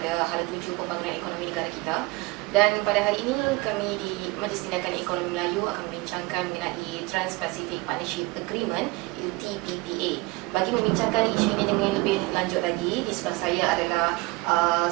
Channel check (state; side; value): quieter; left; 23.1 dB